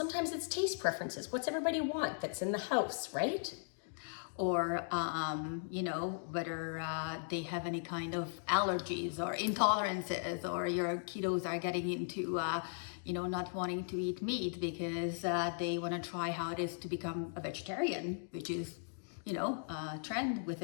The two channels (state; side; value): silent; right; digital silence